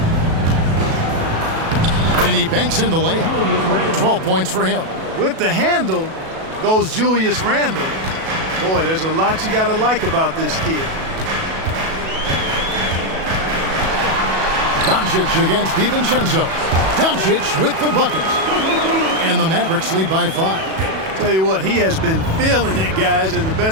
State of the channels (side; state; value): left; late; 37 ms